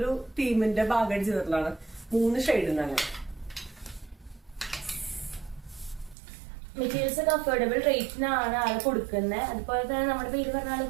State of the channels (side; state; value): left; drops out; at 6.2 s